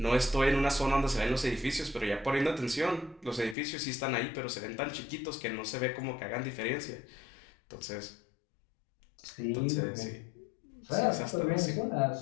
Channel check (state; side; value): drops out; right; at 3.6 s